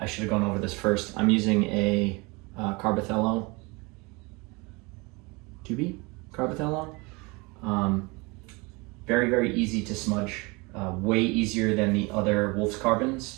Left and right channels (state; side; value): quieter; left; 26.7 dB